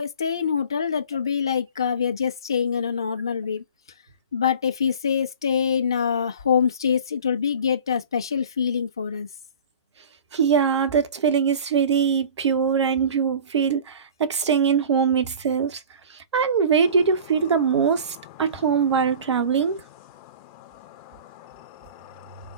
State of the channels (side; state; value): both; inverted; correlation -0.41